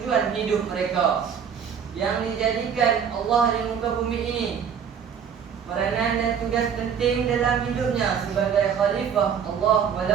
hidup mereka yang dijadikan Allah di muka bumi ini. Peranan dan tugas penting dalam hidupnya sebagai khalifah Allah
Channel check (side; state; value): left; quieter; 7.5 dB